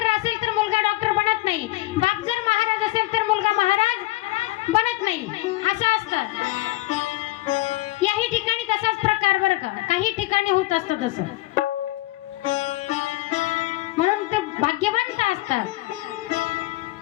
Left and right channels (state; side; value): quieter; right; 18.5 dB